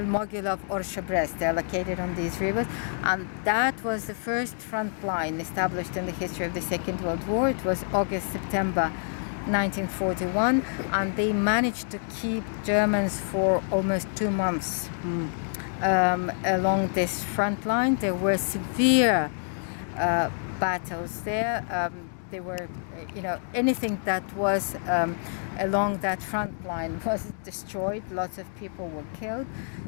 Orsha, Brest. They're located on these rivers. And that was the first front line established in the history of the Second World War. It was August, September 1941, and they managed to keep Germans for almost 2 months along this front line. There were severe battles there. There were, anything that was along that front line was destroyed. Lots of people were killed,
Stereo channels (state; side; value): silent; right; digital silence